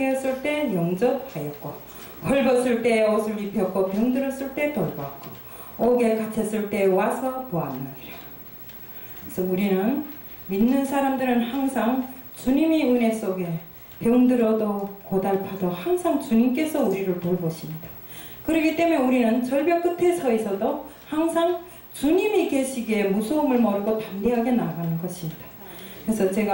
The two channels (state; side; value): identical; both; correlation 1.00